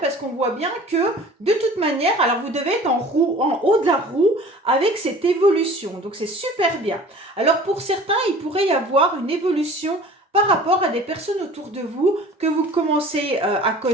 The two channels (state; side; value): normal; both; correlation 0.45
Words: parce qu'on voit bien que, de toute manière, alors vous devez être en haut de la roue avec cette évolution. Donc, c'est super bien. Alors, pour certains, il pourrait y avoir une évolution par rapport à des personnes autour de vous que vous commencez à